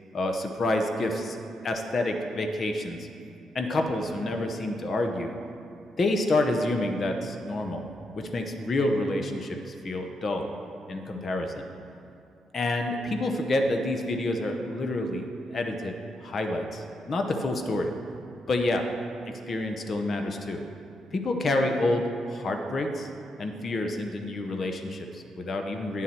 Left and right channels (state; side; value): normal; both; correlation 0.82